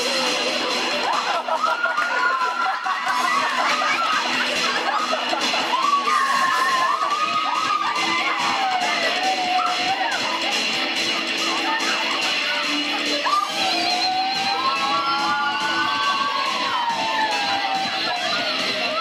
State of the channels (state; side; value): identical; both; correlation 1.00